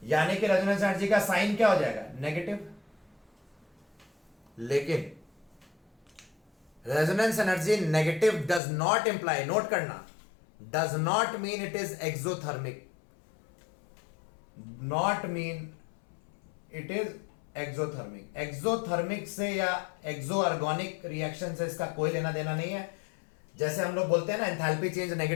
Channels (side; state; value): right; drops out; at 8.6 s